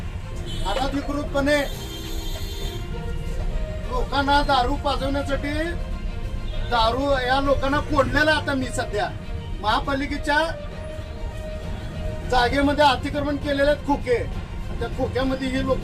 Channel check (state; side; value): identical; both; correlation 1.00